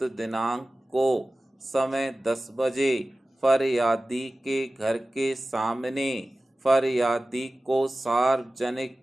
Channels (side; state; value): both; normal; correlation 0.96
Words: दिनांक को समय 10 बजे फरियादी के घर के सामने फरियादी को सार्वजनिक